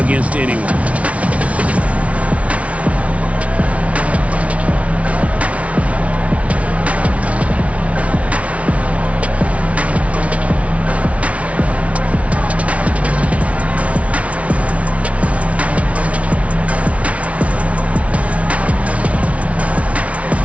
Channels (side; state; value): left; late; 0.064 ms